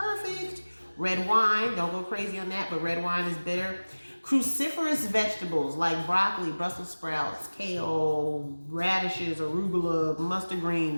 Red wine, don't go crazy on that, but red wine is bitter. Cruciferous vegetables like broccoli, Brussels sprouts, kale, radishes, arugula, mustard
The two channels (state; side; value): inverted; both; correlation -1.00